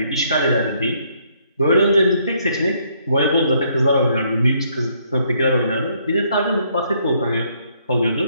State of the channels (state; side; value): inverted; both; correlation -0.69